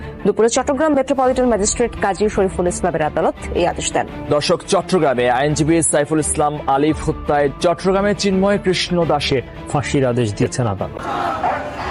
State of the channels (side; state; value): both; identical; correlation 1.00